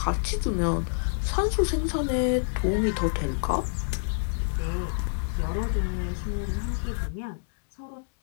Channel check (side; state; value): right; silent; digital silence